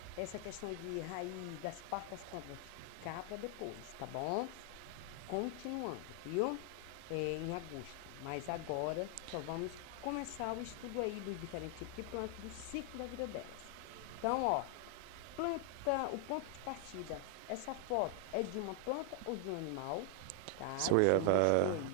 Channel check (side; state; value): both; different; correlation 0.00